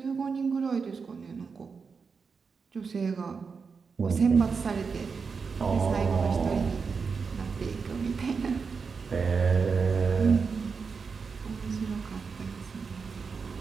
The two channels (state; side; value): quieter; left; 5.3 dB